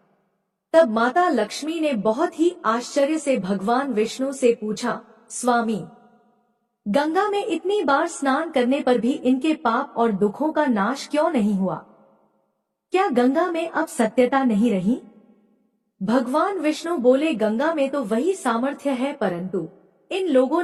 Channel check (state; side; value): identical; both; correlation 1.00